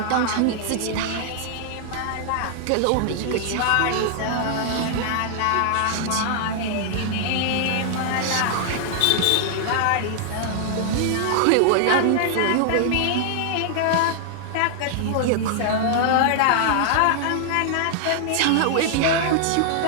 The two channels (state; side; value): different; both; correlation -0.01